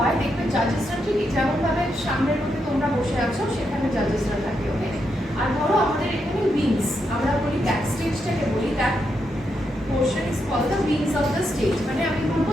দেখবে জাজেসরা ঠিক যেমনভাবে সামনের মধ্যে তোমরা বসে আছো সেখানে জাজেসরা থাকে, ওকে? আর ধরো আমাদের এখানে উইংস, আমরা বলি ব্যাক স্টেজটাকে বলি, that portion is called the wings of the stage. মানে আমি বলবো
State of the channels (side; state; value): both; normal; correlation 0.82